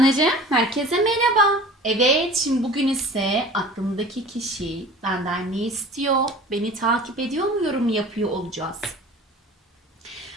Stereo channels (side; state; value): both; normal; correlation 0.42